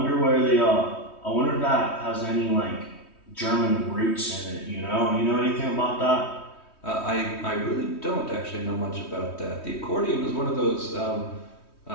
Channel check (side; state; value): right; late; 3.2 ms